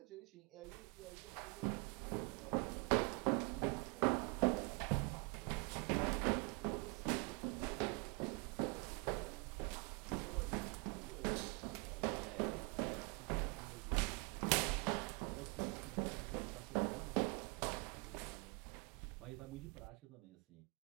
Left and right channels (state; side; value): quieter; left; 30.5 dB